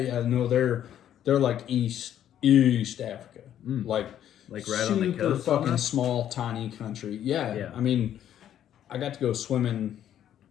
no, they're like East Africa, like right on the coast. Fucking Almost? small, tiny country. Yeah, I mean, I got to go swimming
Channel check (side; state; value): right; quieter; 10.7 dB